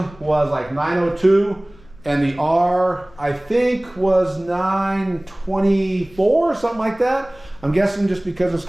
was like 902, and the R I think was 924, something like that. I'm guessing just because it's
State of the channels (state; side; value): noise; left; rumble, 24 dB below the sound